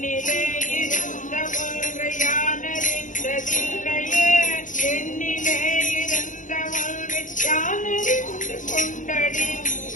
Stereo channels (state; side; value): late; right; 0.37 ms